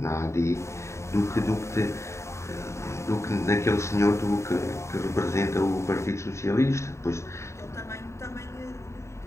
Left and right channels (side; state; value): right; late; 0.14 ms